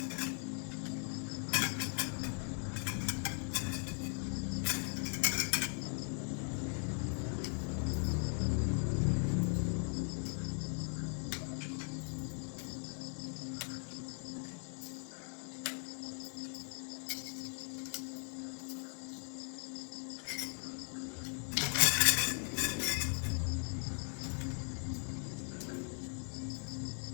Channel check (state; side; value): silent; right; 52 dB below the other